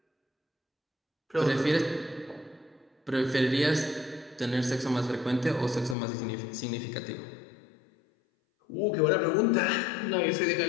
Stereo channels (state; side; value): drops out; right; at 6.0 s